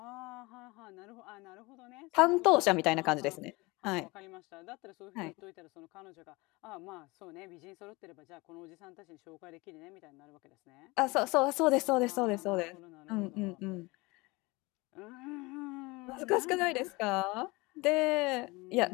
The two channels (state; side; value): quieter; right; 24.0 dB